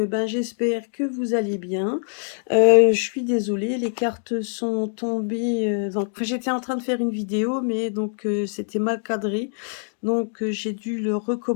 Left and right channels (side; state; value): right; silent; digital silence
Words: j'espère que vous allez bien. Je suis désolée, les cartes sont tombées. J'étais en train de faire une vidéo, mais donc c'était mal cadré. Donc, j'ai dû le